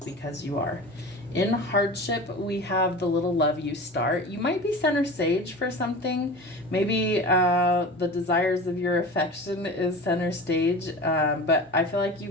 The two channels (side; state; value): both; normal; correlation 0.34